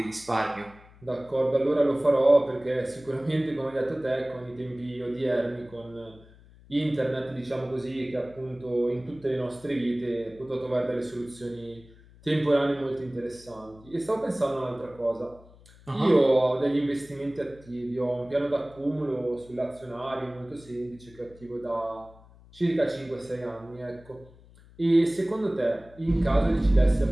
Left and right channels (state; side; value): noise; left; hum, 24 dB below the sound